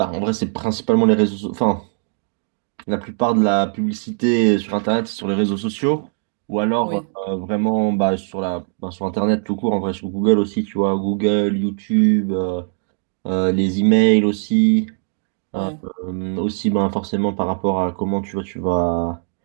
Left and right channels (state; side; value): silent; left; 60 dB below the other